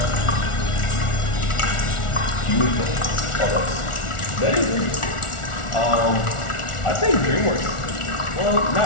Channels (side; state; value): right; late; 1.4 ms